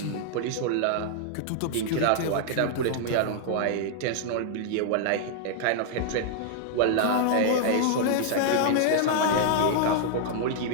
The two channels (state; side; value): different; both; correlation -0.01